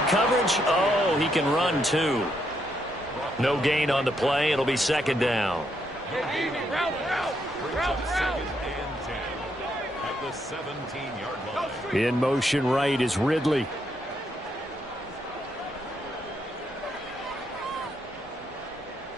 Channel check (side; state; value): both; normal; correlation 0.77